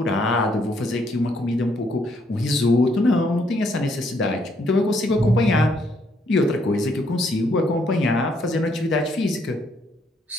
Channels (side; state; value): both; normal; correlation 0.71